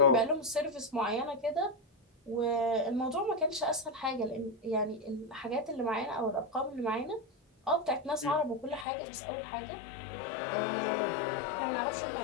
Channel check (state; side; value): drops out; right; at 8.8 s